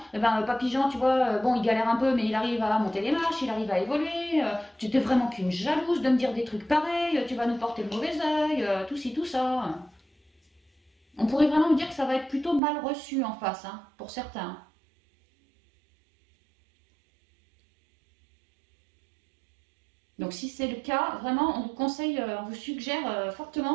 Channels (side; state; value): left; drops out; at 12.6 s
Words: eh ben, Papy Jean, tu vois, bon, il galère un peu, mais il arrive à monter les marches, il arrive à évoluer. Tu t'es vraiment qu'une jalouse de me dire des trucs pareils, tu vas nous porter le mauvais œil, tout ci, tout ça. On pourrait vraiment me dire que ça va être plutôt mal reçu en face, hein, pour certains. Donc si c'est le cas, vraiment, on vous conseille, on vous suggère